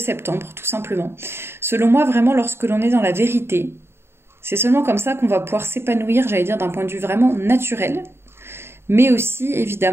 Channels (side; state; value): left; late; 0.12 ms